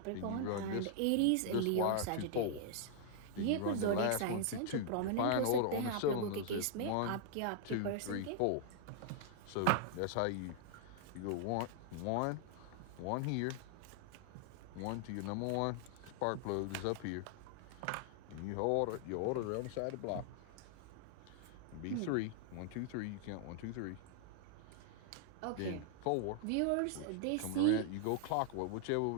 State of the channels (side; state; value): both; different; correlation -0.01